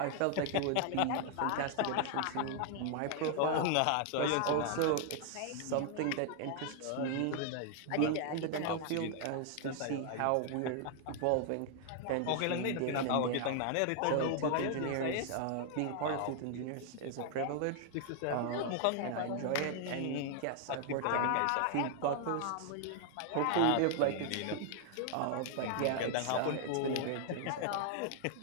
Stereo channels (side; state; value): both; different; correlation 0.00